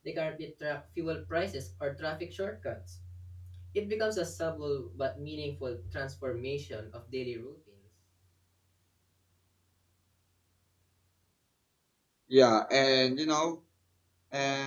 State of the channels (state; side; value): identical; both; correlation 1.00